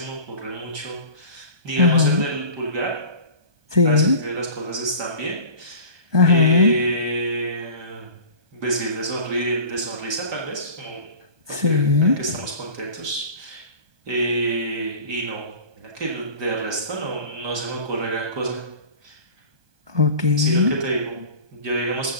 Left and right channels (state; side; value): late; left; 1.2 ms